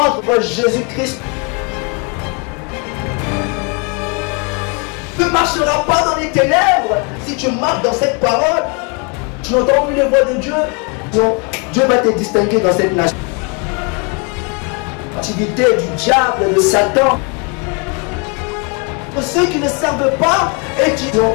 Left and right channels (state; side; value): quieter; right; 33.2 dB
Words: Jésus-Christ. Tu ne marcheras pas dans les ténèbres si tu marches dans cette parole. Tu n'entends plus les voix de Dieu. Donc, Dieu va te distinguer dans cette nation. L'activité du diable, de Satan. Pour ceux qui ne servent pas et qui donc,